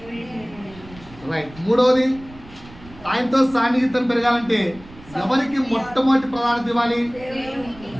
రైట్. మూడవది, ఆయనతో సన్నిహితం పెరగాలంటే ఎవరికి మొట్టమొదటి ప్రాధాన్యత ఇవ్వాలి?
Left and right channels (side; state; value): right; noise; rumble, 20 dB below the sound